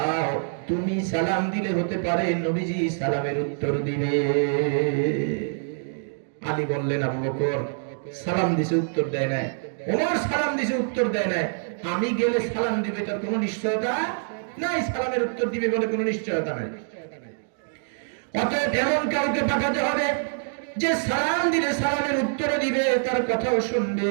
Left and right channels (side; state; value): left; silent; digital silence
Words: তুমি সালাম দিলে হতে পারে নবীজি সালামের উত্তর দিবে। আলী বললেন, আবু বকর সালাম দিছে উত্তর দেয় না, ওমর সালাম দিছে উত্তর দেয় না, আমি গেলে সালাম দিবে তার কোনো নিশ্চয়তা নাই, সালামের উত্তর দিবে বলে কোনো নিশ্চয়তা নাই। অতএব এমন কাউকে পাঠাতে হবে যে সালাম দিলে সালামের উত্তর দিবে, তার কথাও শুনবে।